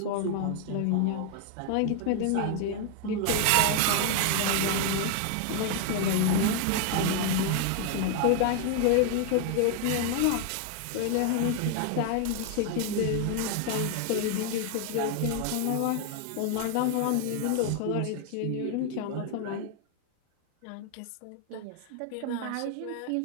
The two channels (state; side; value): different; both; correlation 0.00